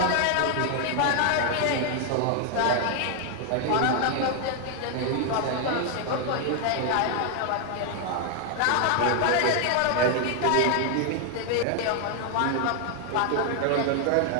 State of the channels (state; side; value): different; both; correlation 0.00